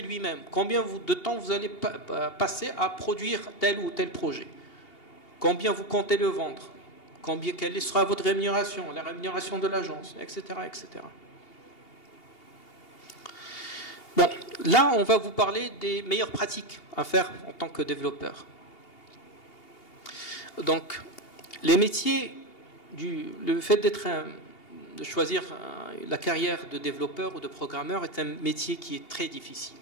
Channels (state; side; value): late; right; 2.8 ms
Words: lui-même. Combien de temps vous allez passer à produire tel ou tel projet? Combien vous comptez le vendre? Quelle sera votre rémunération? La rémunération de l'agence, etc., etc. Bon, là, on va vous parler des meilleures pratiques à faire en tant que développeur. Donc, les métiers, le fait de choisir la carrière de développeur ou de programmeur est un métier qui est très difficile.